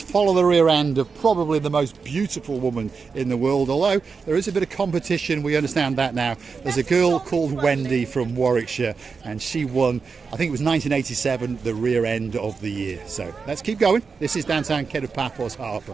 the rear end of probably the most beautiful woman in the world, although there is a bit of competition, we understand that now. There's a girl called Wendy from Warwickshire and she won, I think it was 1987, the rear end of the year. So let's keep going. This is downtown Kato Paphos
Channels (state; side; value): quieter; left; 5.1 dB